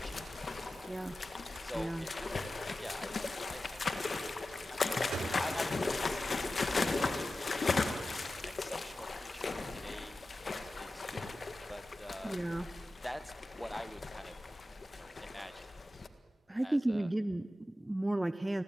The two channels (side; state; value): both; normal; correlation 0.94